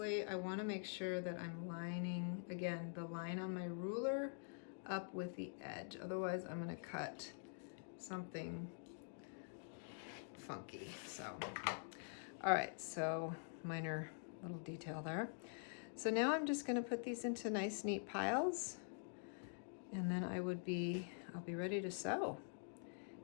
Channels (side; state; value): right; silent; digital silence